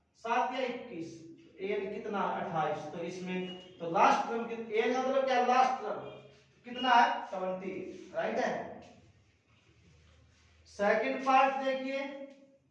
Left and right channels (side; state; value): both; identical; correlation 1.00